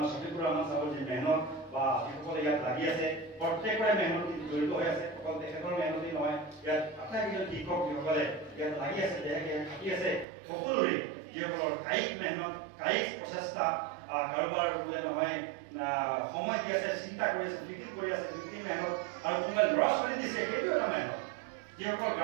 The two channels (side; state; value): left; drops out; at 10.2 s